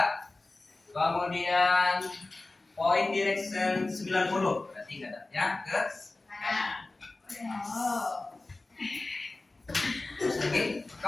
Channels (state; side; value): quieter; right; 3.1 dB